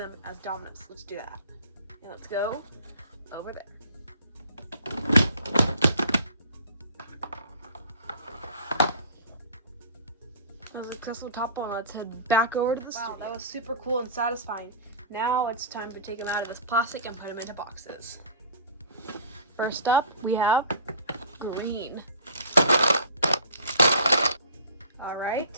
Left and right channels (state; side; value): inverted; both; correlation -0.43